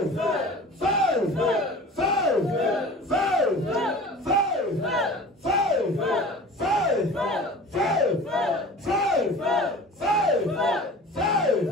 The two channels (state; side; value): normal; both; correlation 0.40